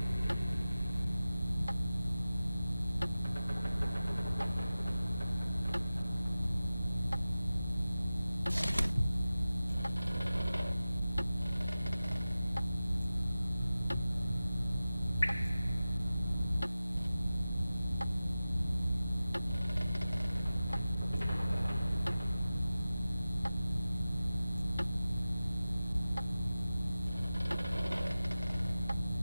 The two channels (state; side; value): inverted; both; correlation -0.95